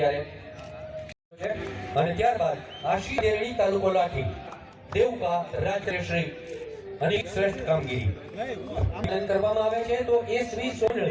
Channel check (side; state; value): both; identical; correlation 1.00